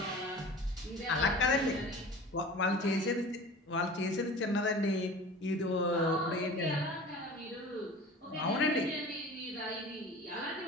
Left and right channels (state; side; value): normal; both; correlation 0.39